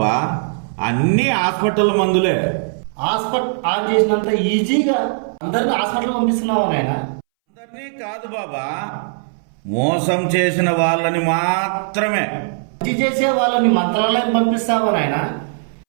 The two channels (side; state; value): left; silent; 65 dB below the other